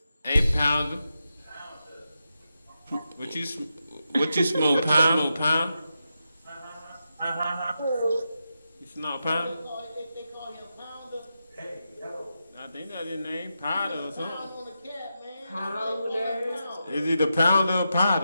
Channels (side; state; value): both; inverted; correlation -0.88